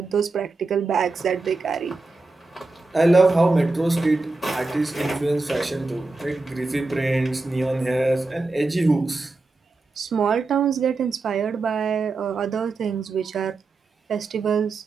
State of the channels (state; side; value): quieter; left; 3.4 dB